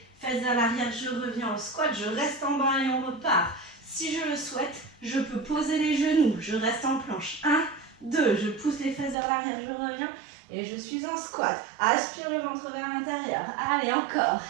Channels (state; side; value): drops out; left; at 9.2 s